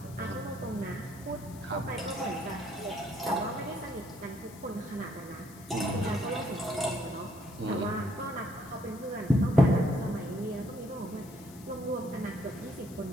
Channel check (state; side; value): noise; left; hiss, 20 dB below the sound